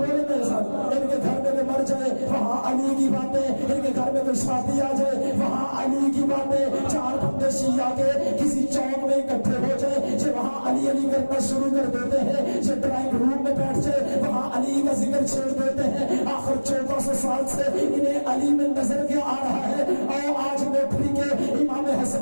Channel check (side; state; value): both; inverted; correlation -1.00